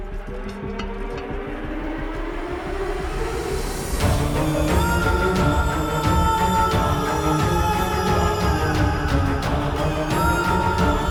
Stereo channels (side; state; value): both; identical; correlation 1.00